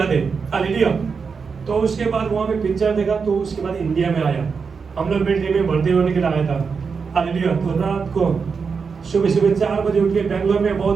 है। हालेलुया। तो उसके बाद वहाँ पे पिक्चर देखा, तो उसके बाद इंडिया में आया, हम लोग मिलिट्री में भर्ती होने के लिए आया था। हालेलुया। तो रात को सुबह 4 बजे उठ के बेंगलोर में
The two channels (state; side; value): quieter; left; 5.5 dB